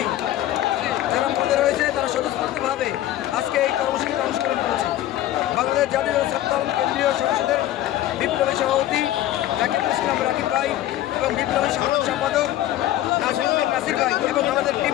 যারা পদে রয়েছে তারা স্বতঃস্ফূর্তভাবে আজকে এই কর্মসূচিতে অংশগ্রহণ করেছে। বাংলাদেশ জাতীয় সাতদল কেন্দ্রীয় সংসদের বিপ্লবী সভাপতি রাকিব ভাই এবং বিপ্লবী সাধারণ সম্পাদক নাসির ভাই এবং আমাদের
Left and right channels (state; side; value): quieter; right; 13.8 dB